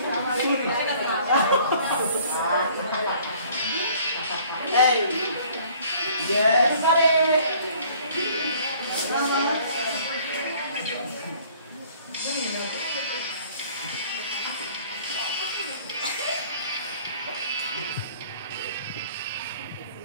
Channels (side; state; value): both; inverted; correlation -0.55